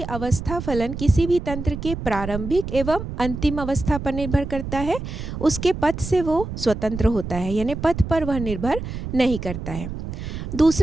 अवस्था फलन किसी भी तंत्र के प्रारंभिक एवं अंतिम अवस्था पर निर्भर करता है, उसके पथ से वो स्वतंत्र होता है, यानी पथ पर वह निर्भर नहीं करता है।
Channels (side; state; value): right; noise; rumble, 7 dB below the sound